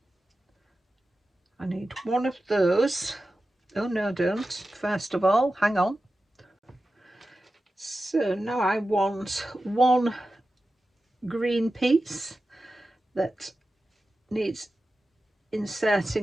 I need one of those. Oh no, don't. First of all, hang on. So now I want one green piece that needs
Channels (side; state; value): both; normal; correlation 0.93